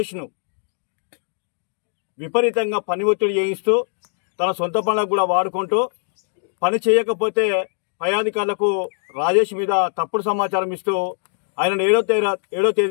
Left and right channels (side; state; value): right; silent; 65 dB below the other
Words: విపరీతంగా పని ఒత్తిడి చేయిస్తూ తన సొంత పనులకు కూడా వాడుకుంటూ పని చేయకపోతే పై అధికారులకు రాజేష్ మీద తప్పుడు సమాచారం ఇస్తూ ఆయన 7వ